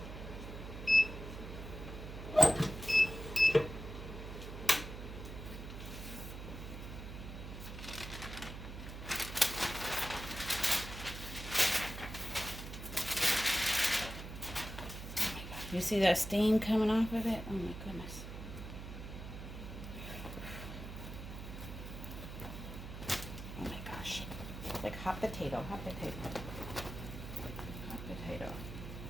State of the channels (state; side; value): noise; right; hum, 9 dB below the sound